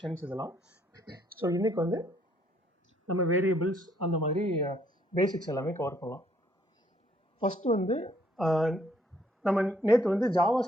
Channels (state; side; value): normal; both; correlation 0.67